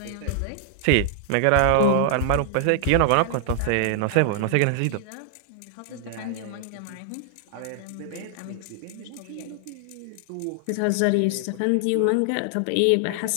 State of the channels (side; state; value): both; different; correlation 0.00